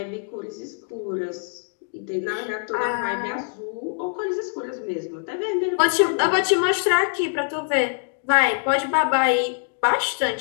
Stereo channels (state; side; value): silent; right; 61 dB below the other